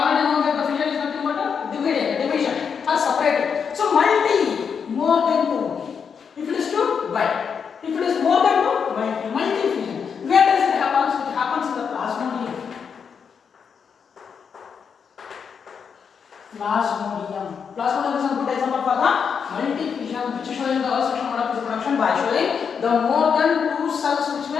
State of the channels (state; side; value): quieter; right; 6.6 dB